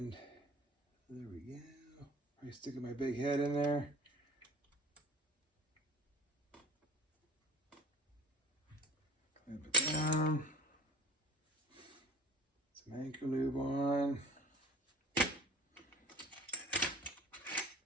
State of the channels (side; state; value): both; normal; correlation 0.38